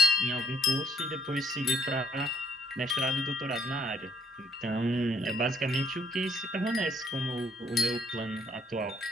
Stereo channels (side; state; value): both; normal; correlation 0.65